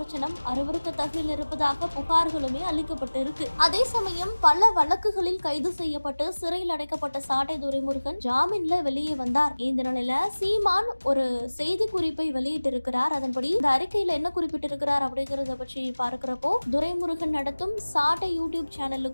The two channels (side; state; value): both; inverted; correlation -1.00